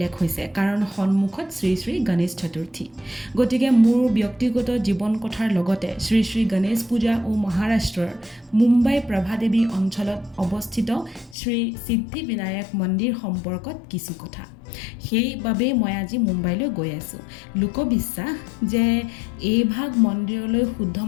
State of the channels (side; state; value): right; drops out; at 11.4 s